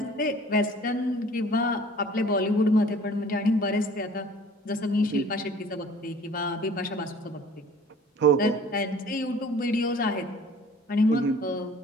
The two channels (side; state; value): both; normal; correlation 0.49